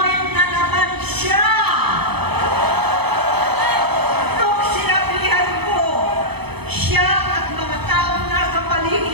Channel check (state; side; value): late; left; 0.98 ms